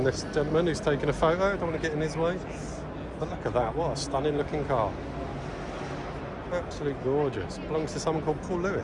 this gentleman who's taking a photo. I don't want to get in his way. But look at that. What a stunning looking car. Absolutely gorgeous. Belongs to someone called Paul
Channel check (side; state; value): both; identical; correlation 1.00